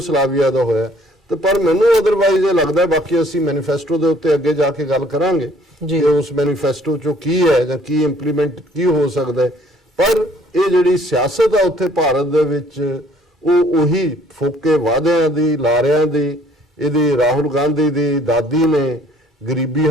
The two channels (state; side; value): normal; both; correlation 0.59